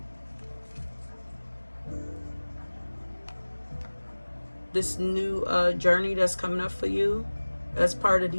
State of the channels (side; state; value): both; inverted; correlation -1.00